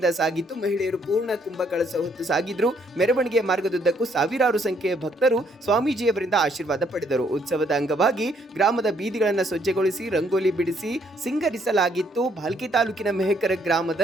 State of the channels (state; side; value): normal; both; correlation 0.69